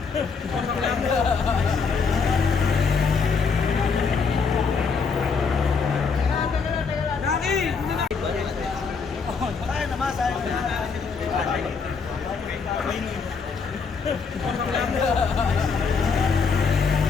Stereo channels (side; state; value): right; quieter; 5.3 dB